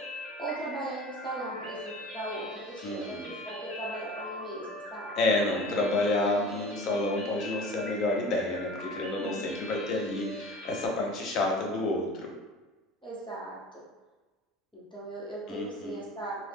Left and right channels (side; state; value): both; normal; correlation 0.39